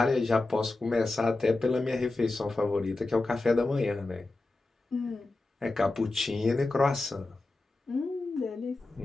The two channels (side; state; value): right; quieter; 3.1 dB